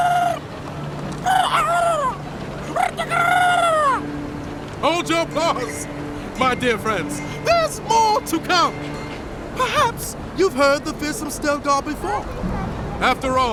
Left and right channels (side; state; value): both; identical; correlation 1.00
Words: Hold your applause, my dear friends. There's more to come. Perhaps you've heard the fearsome Stelgar before. After